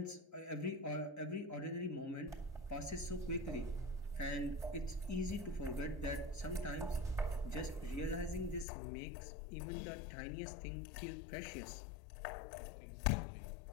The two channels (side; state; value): right; drops out; at 8.7 s